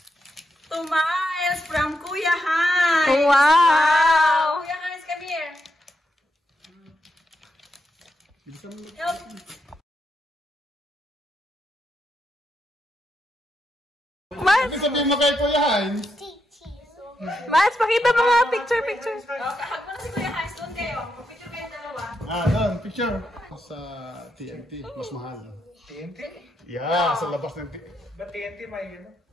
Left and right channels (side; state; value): both; normal; correlation 0.83